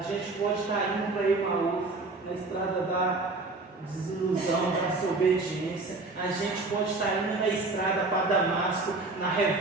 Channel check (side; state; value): left; quieter; 3.4 dB